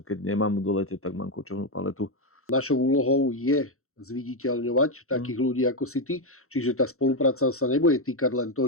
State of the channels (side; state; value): right; late; 0.63 ms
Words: nemám v dolete, tak mám kočovnú paletu. Našou úlohou je zviditeľňovať takých ľudí ako si ty. Čiže tá spolupráca sa nebude týkať len to,